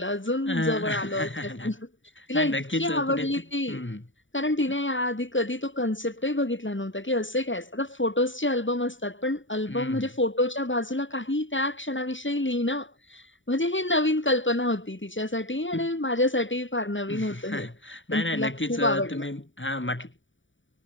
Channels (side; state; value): right; late; 0.56 ms